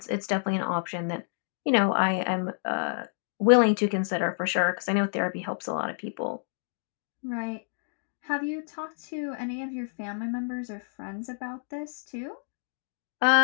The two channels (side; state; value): right; silent; digital silence